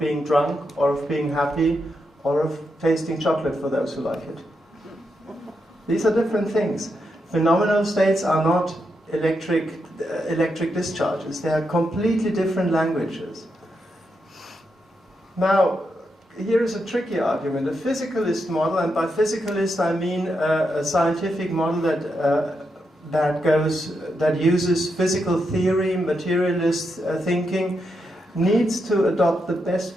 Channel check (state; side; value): normal; both; correlation 0.84